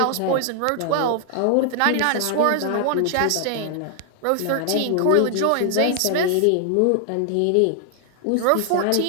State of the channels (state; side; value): different; both; correlation 0.00